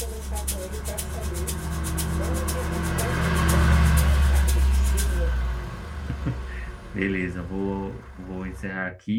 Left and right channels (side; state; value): both; identical; correlation 1.00